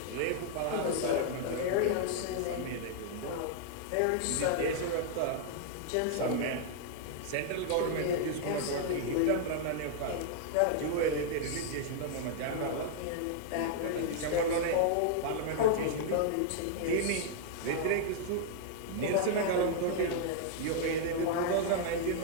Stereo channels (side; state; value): both; different; correlation -0.01